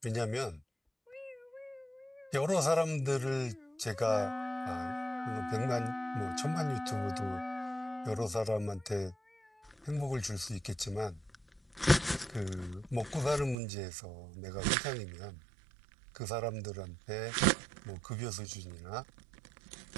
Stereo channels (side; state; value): left; drops out; at 13.6 s